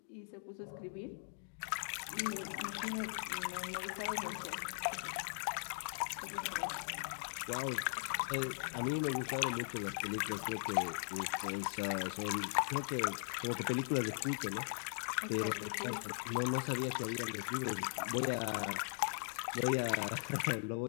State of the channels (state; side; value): silent; right; digital silence